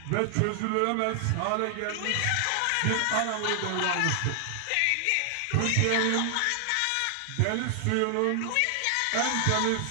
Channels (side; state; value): both; different; correlation 0.00